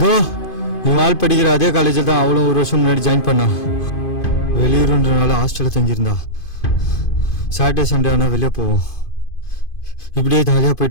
தோ இவன் ஆள் படிக்கிற அதே காலேஜில் தான் அவளும் ஒரு வருஷம் முன்னாடி ஜாயின் பண்ணா. வெளியூருன்றனால ஹாஸ்டலில் தங்கியிருந்தா. சாட்டர்டே சண்டே ஆனால் வெளியே போவோம். இப்படியே ஜாலியாக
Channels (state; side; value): late; right; 2.5 ms